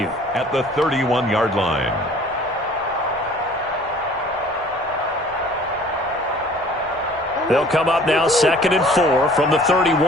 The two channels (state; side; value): noise; left; rumble, 29 dB below the sound